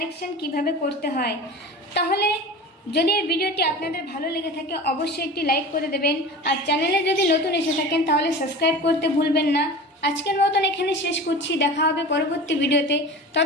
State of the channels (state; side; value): normal; both; correlation 0.34